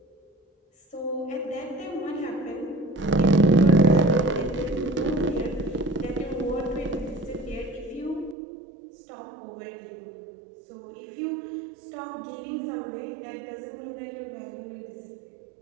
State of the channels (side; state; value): left; drops out; at 8.3 s